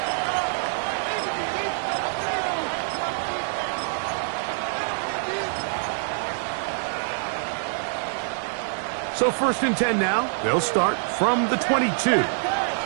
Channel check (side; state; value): left; silent; digital silence